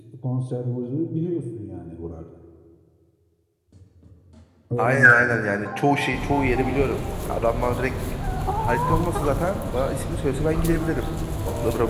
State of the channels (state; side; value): identical; both; correlation 1.00